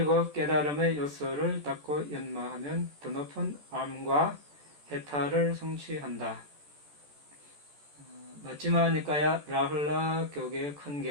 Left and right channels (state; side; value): late; left; 14 ms